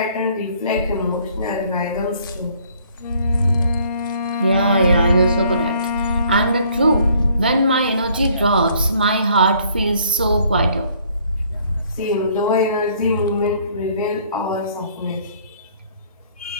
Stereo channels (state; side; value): inverted; both; correlation -0.61